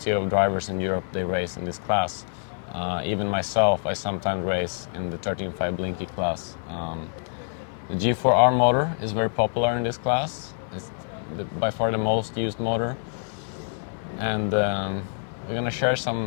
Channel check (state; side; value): silent; right; 61 dB below the other